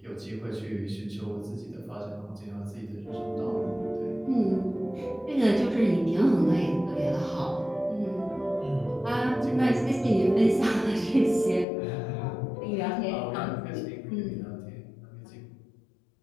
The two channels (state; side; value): drops out; right; at 11.7 s